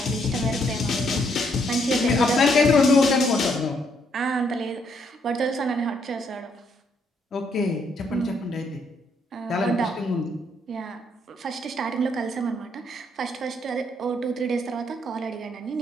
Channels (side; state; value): both; normal; correlation 0.72